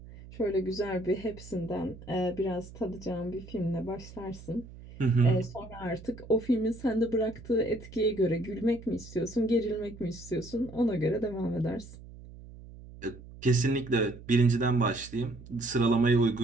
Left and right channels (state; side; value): noise; right; hum, 17 dB below the sound